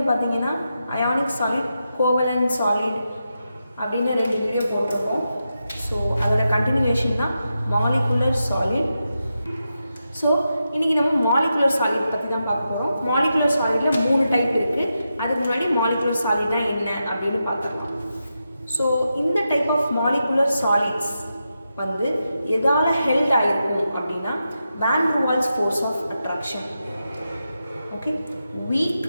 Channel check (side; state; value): both; inverted; correlation -0.88